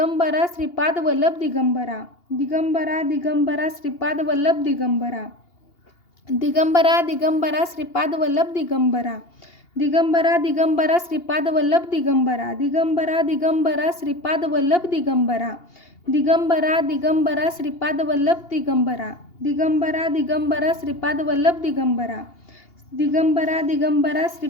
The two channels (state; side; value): late; right; 2.8 ms